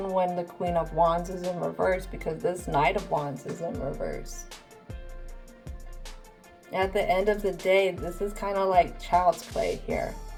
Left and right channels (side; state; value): both; identical; correlation 1.00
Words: when the Queen of Wands is in reverse, because this Knight of Wands is in reverse. At the end of the day, this is kind of like child's play here.